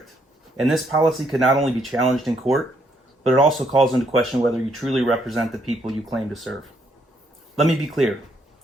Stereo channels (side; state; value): both; normal; correlation 0.72